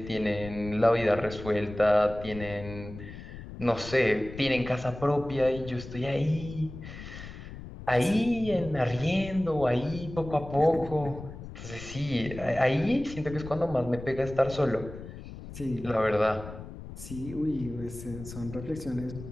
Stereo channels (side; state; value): left; noise; rumble, 12 dB below the sound